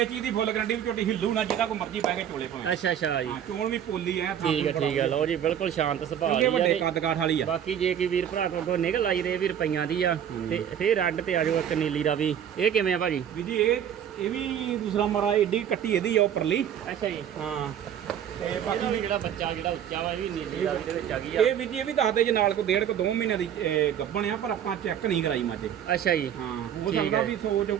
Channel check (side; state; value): left; quieter; 9.5 dB